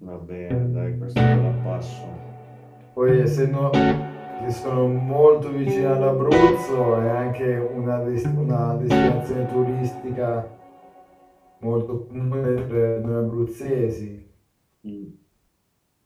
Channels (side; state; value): both; identical; correlation 1.00